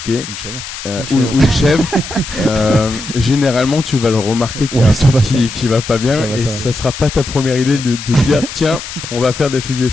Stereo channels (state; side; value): noise; left; hiss, 10 dB below the sound